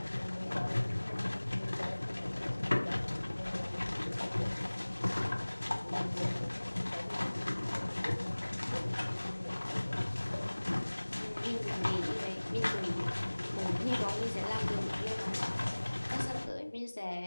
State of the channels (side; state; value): both; inverted; correlation -1.00